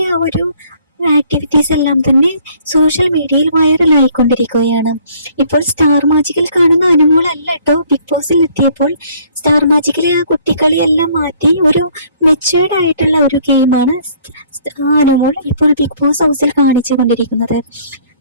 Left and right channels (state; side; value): inverted; both; correlation -0.60